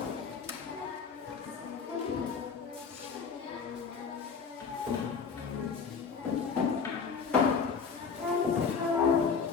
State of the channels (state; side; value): quieter; right; 5.7 dB